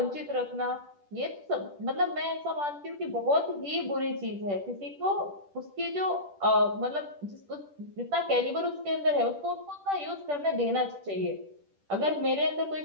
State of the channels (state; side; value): late; left; 10 ms